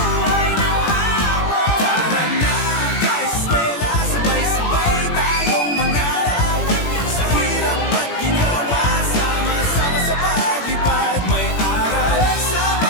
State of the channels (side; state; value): right; late; 17 ms